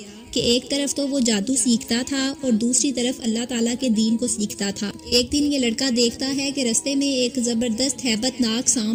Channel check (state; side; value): identical; both; correlation 1.00